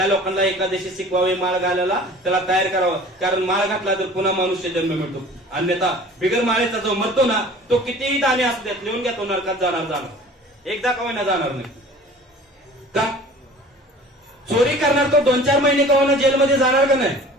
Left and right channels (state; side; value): normal; both; correlation 0.45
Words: लोकांना एकादशी शिकवावी, माळ घालायला त्याला तयार करावं. कारण माळ घातला तर पुन्हा मनुष्य जन्म मिळतो. अन्यथा बिगर माळेचा जो मरतो ना, तो कितीही दाणे असू देत लिहून घ्या, तो नरकात जाणार. एकदा का होईना जाणार नाही. का? चोरी करणार तो 2-4 महिने का होईना जेलमध्ये जाणार का नाही?